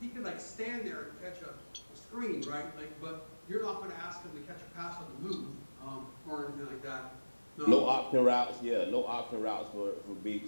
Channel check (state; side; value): inverted; both; correlation -1.00